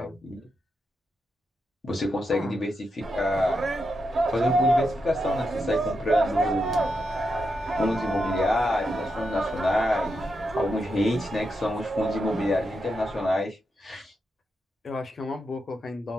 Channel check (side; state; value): both; normal; correlation 0.85